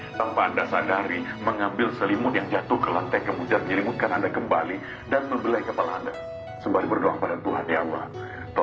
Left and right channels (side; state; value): both; identical; correlation 1.00